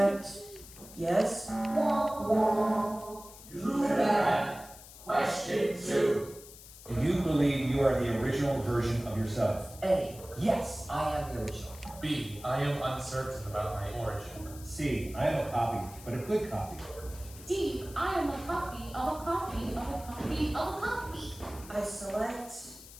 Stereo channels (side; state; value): left; noise; hiss, 18 dB below the sound